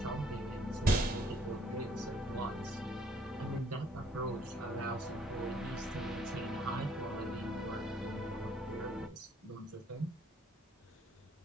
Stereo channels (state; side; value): normal; both; correlation 0.64